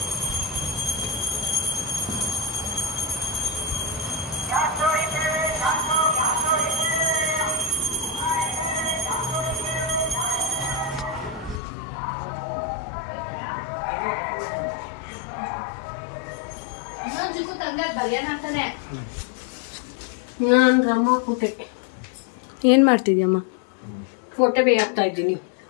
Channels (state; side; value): drops out; right; at 11.6 s